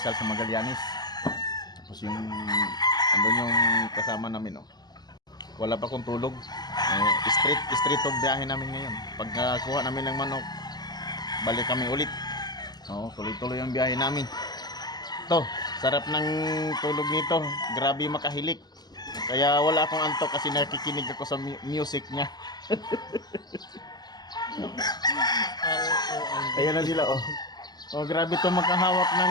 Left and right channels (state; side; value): late; right; 0.20 ms